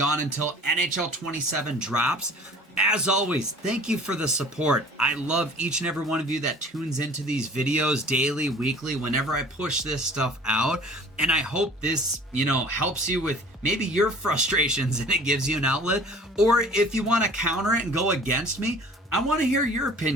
until NHL 27 drops. As always, thank you for the support. I love each and every one of you that tunes into these videos daily, weekly, whenever I push this stuff out. And I hope this, you know, helps you with maybe your frustrations and it gives you an outlet. Or if you want to counter it and go against me, I want to hear your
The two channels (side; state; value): both; normal; correlation 0.47